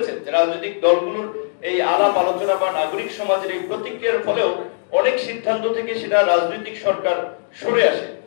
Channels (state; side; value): silent; right; digital silence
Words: যে রাজনৈতিক দলগুলোর এই আলাপ আলোচনা বা নাগরিক সমাজের এই প্রতিক্রিয়ার ফলেও অনেক সিদ্ধান্ত থেকে সেটা রাজনৈতিক সরকার সরে আসে।